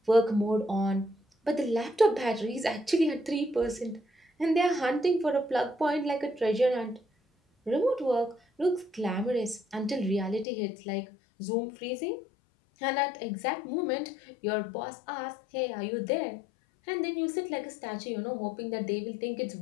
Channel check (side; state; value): right; drops out; at 10.5 s